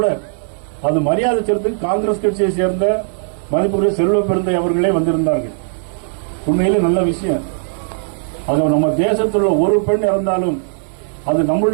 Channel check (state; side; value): silent; left; 61 dB below the other